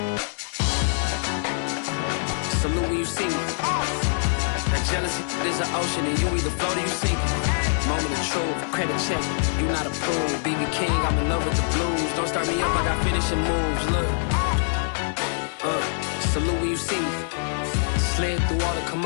Salute when you see me. That jealousy is an ocean and you either float or you sink. Moment of truth, credit check, you not approved. BB King, I'm in love with the blues. Don't start me up, I got finishing moves, look. Salute when you see me. Slid through all the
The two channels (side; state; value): right; silent; digital silence